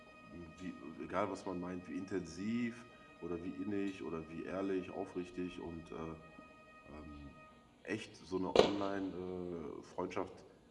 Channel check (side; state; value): both; identical; correlation 1.00